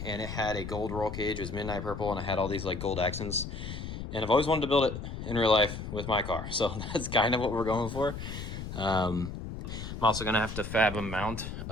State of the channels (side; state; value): left; noise; rumble, 7 dB below the sound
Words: and it had a gold roll cage. It was midnight purple, and it had all these like gold accents. And I've always wanted to build it in real life with my car, so that's kind of what we're going for. I'm also gonna have to fab a mount